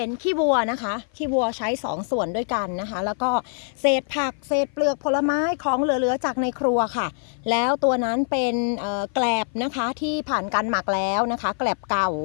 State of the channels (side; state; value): right; silent; 56 dB below the other